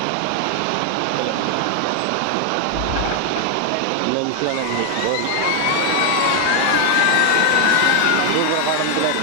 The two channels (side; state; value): both; different; correlation 0.01